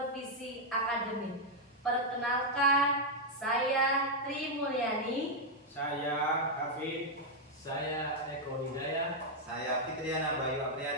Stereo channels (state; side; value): normal; both; correlation -0.01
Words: akademik. Perkenalkan, saya Tri Mulyani. Saya Hafid. Saya Eko Hidayah. Saya Fitriana Bayu